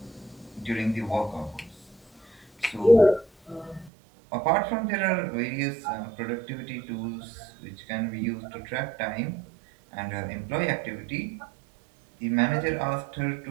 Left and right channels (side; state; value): left; drops out; at 3.9 s